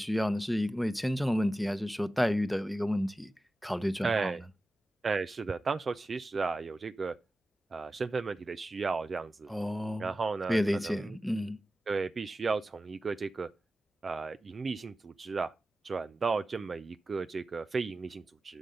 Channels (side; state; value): both; normal; correlation 0.94